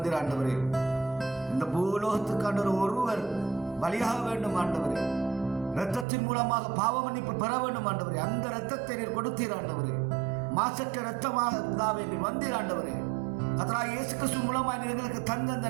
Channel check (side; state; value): left; drops out; at 6.1 s